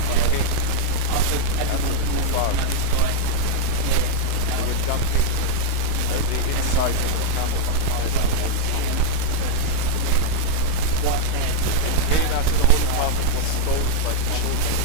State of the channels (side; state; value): both; different; correlation 0.00